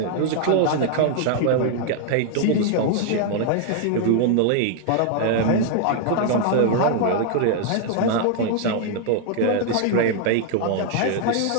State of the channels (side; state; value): both; different; correlation 0.00